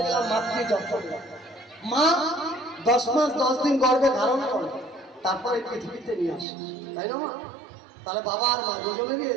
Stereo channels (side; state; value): left; drops out; at 6.5 s